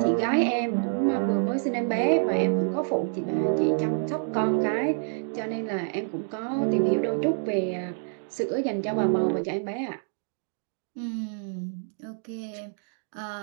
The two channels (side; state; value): left; silent; digital silence